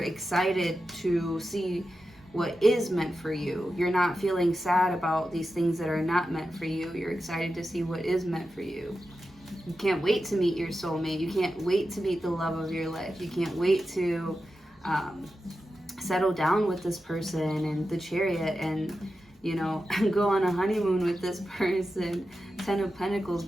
excited to see what is meant for you. You're not feeling sad about these things that are not meant for you. You're excited to see what is meant for you. You can't wait to meet your soulmate. You can't wait to meet the love of your life. You can't wait to settle down with this person and the Chariot and, you know, go on a honeymoon with this person. 10 of Pentacles,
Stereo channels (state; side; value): normal; both; correlation 0.91